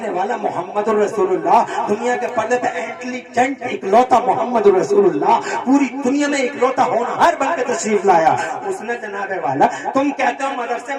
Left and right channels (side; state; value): both; identical; correlation 1.00